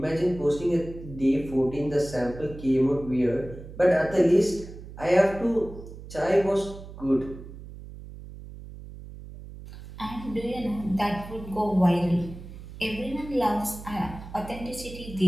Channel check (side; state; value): right; noise; hum, 14 dB below the sound